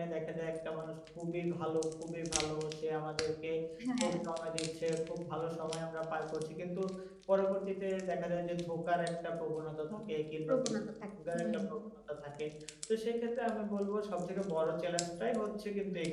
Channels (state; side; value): identical; both; correlation 1.00